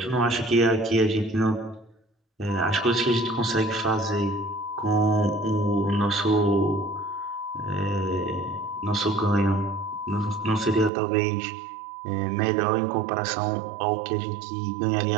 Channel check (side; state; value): left; drops out; at 10.9 s